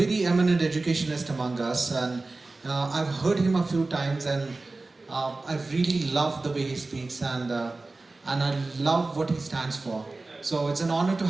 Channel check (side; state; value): left; quieter; 3.3 dB